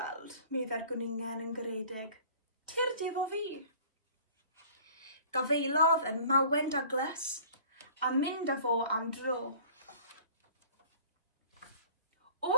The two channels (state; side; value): inverted; both; correlation -0.50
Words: meddai'r gwningen yn garedig. Tyrd efo fi. Gafeilodd yn mawen Douglas a mynd â fo am dro.